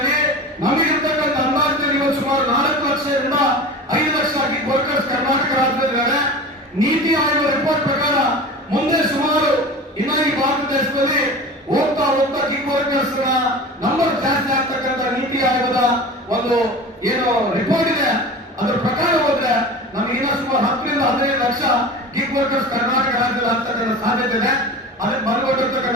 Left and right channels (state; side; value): normal; both; correlation 0.34